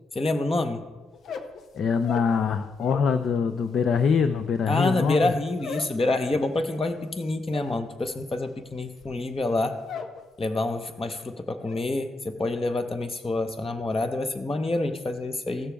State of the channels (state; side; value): quieter; right; 3.5 dB